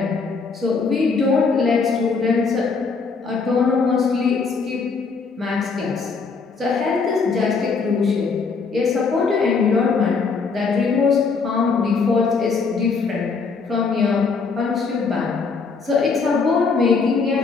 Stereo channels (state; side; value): quieter; right; 4.8 dB